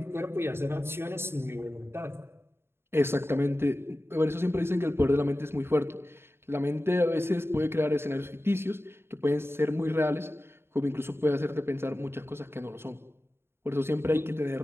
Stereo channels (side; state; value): left; late; 0.12 ms